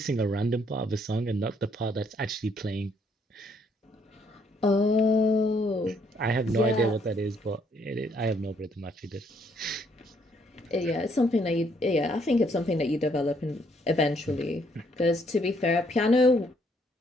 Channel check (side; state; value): both; normal; correlation 0.69